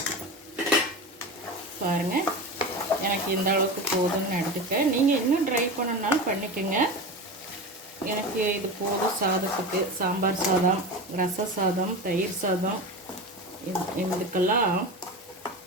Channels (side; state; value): both; normal; correlation 0.26